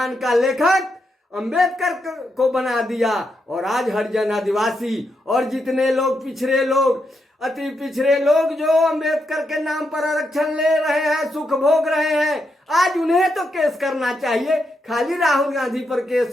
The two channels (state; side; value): normal; both; correlation 0.82